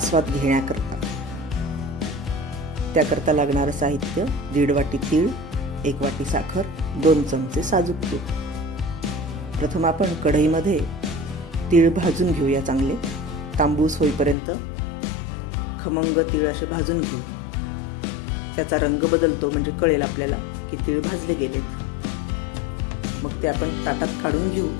घेण्याकरता. त्याकरता लागणारं साहित्य 1.5 वाटी तीळ, 1 वाटी साखर, 2 चमचे साजूक तूप. प्रथम आपण कढईमध्ये तीळ भाजून घेऊया. चांगले तांबूस होईपर्यंत खमंग तीळ असे भाजून घेऊ. त्याचा रंग बदलतो म्हणजे कळेल आपल्याला की तीळ भाजले गेलेत. मग ते आपण ताटात काढून घेऊ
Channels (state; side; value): drops out; right; at 14.4 s